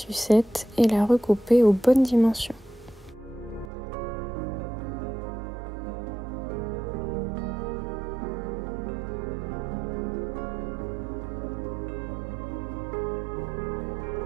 et la recouper aux bonnes dimensions.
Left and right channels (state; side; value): drops out; left; at 3.7 s